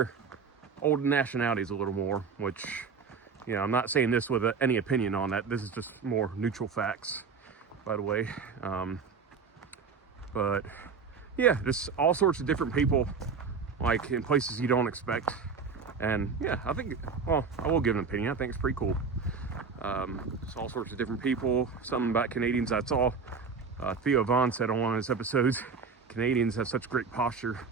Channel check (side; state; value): left; quieter; 5.4 dB